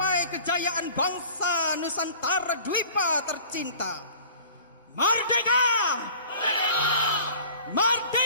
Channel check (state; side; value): inverted; both; correlation -0.45